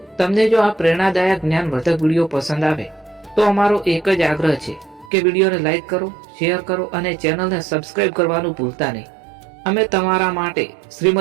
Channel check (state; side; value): drops out; left; at 5.1 s